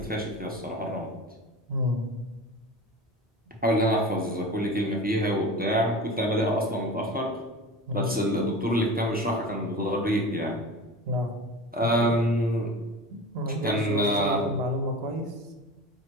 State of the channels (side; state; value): both; normal; correlation 0.34